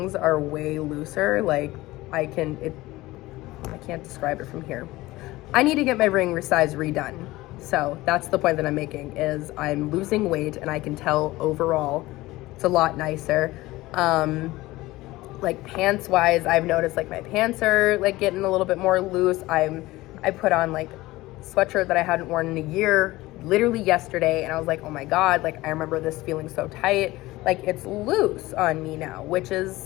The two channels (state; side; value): quieter; right; 18.7 dB